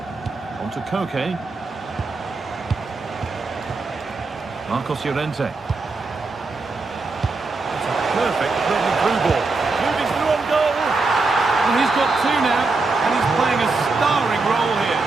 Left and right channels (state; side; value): quieter; left; 3.7 dB